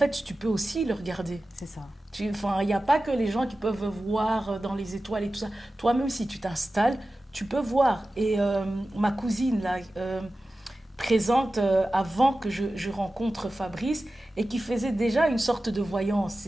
tu peux aussi le regarder. C'est ça. Enfin, il n'y a pas que les gens qui peuvent voir dans les étoiles et tout ça. Toi-même, si tu t'installes, tu peux voir. Et ma cousine, là, présente avant que je rencontre Fabrice, et qui faisait déjà une sorte de voyance.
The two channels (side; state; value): both; normal; correlation 0.95